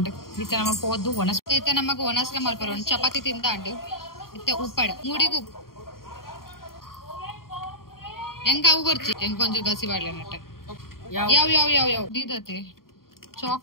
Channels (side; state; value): right; late; 0.92 ms